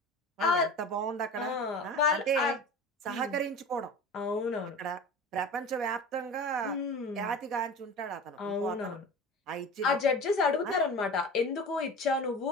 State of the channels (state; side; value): normal; both; correlation 0.34